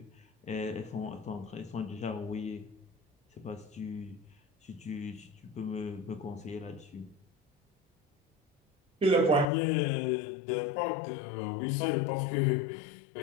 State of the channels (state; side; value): drops out; right; at 9.5 s